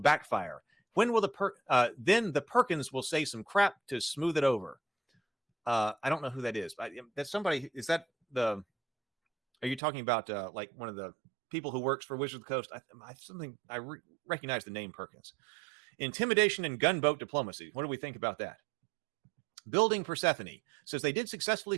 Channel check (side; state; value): left; drops out; at 9.8 s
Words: When will then the Perkins will say some crap to smooth it over. I don't know who that is. That's somebody. Is that are you talking about like one of the people who works for Wizards of the Coast? I recognize the name Perkins. Intimidation and gunboat diplomacy. What do we think about that? Building Persephone says they did successfully